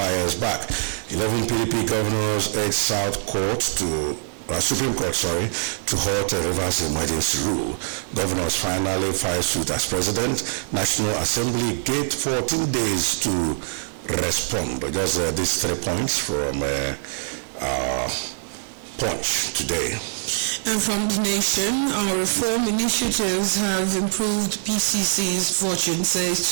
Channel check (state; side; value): silent; left; 63 dB below the other